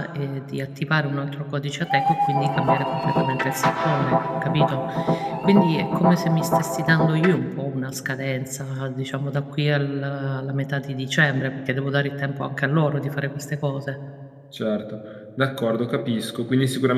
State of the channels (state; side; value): identical; both; correlation 1.00